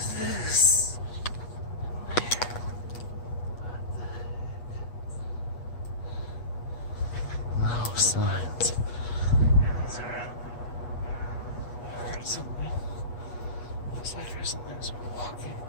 this? No signs. I heard something. Looks like there's something that's walking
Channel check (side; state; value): right; late; 8.3 ms